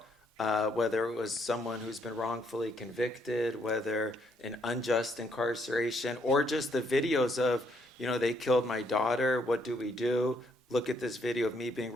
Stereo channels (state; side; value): normal; both; correlation 0.71